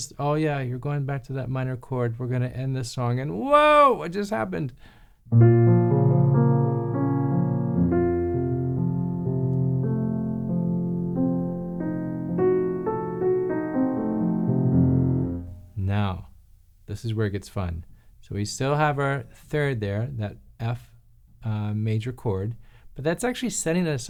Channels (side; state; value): both; identical; correlation 1.00